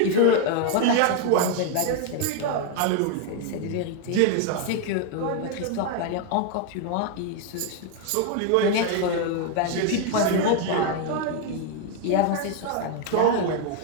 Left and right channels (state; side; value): different; both; correlation 0.01